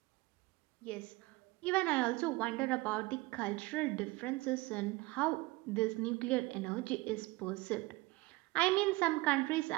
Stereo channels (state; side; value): quieter; left; 21.9 dB